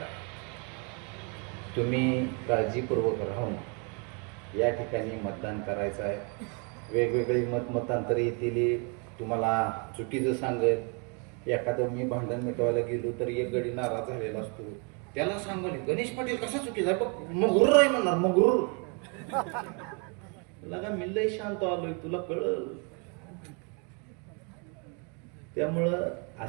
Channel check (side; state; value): left; quieter; 35.4 dB